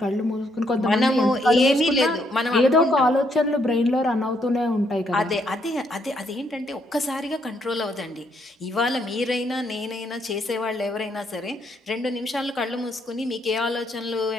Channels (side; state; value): both; normal; correlation 0.73